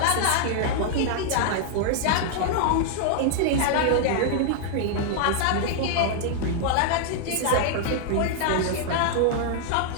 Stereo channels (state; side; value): different; both; correlation -0.01